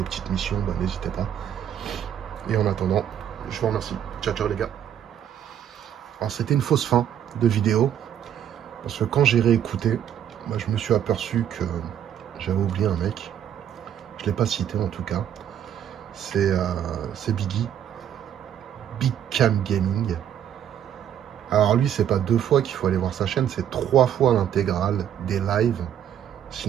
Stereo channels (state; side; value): quieter; left; 9.8 dB